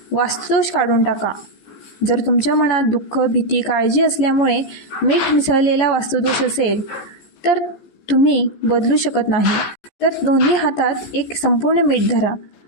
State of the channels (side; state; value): right; late; 14 ms